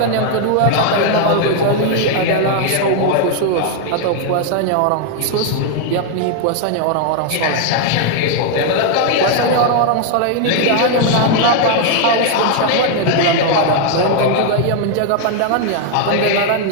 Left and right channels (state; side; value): different; both; correlation 0.00